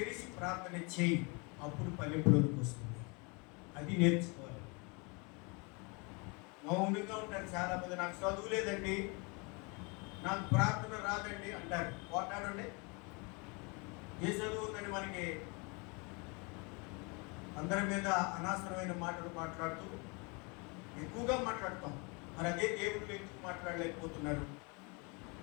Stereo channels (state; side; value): quieter; right; 30.6 dB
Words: ప్రార్థన చేయి. అప్పుడు పల్లెపులోకి వస్తుంది. అది నేర్చుకోవాలి. మౌనంగా ఉంటారు చాలా మంది. నాకు చదువు లేదండి, నాకు ప్రార్థన రాదండి అంటారు. పోటాడండి. ఏ చదువు ఉందని మనకి అందరి మీద అనవసరమైన మాటలు మాట్లాడుతూ ఎక్కువగా మాట్లాడతాం. మరి అదే దేవుళ్ళు ఎందుకు మాట్లాడలేకపోతున్నారు?